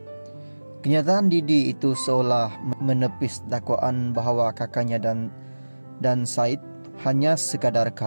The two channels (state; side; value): inverted; both; correlation -1.00